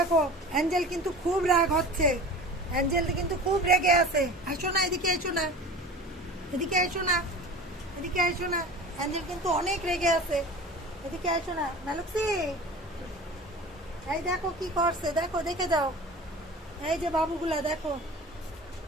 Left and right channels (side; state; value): both; normal; correlation 0.37